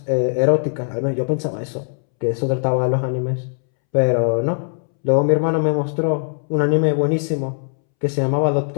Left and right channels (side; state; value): right; silent; 66 dB below the other